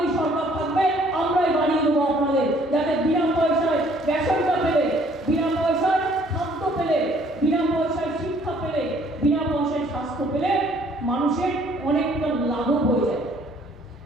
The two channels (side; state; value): both; normal; correlation 0.60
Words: সরকার থাকবে, আমরাই বাড়িয়ে দেবো আপনাদের, যাতে বিনা পয়সায় রেশনটা পেলে, বিনা পয়সায় খাদ্য পেলে, বিনা পয়সায় শিক্ষা পেলে, বিনা পয়সায় স্বাস্থ্য পেলে মানুষের অনেকটা লাঘব হয়ে যায়।